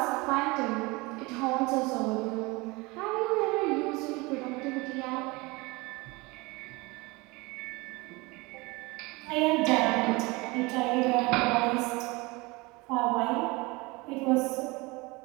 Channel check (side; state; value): left; quieter; 24.4 dB